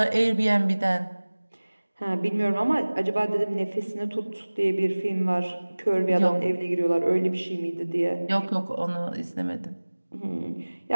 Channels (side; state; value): both; inverted; correlation -1.00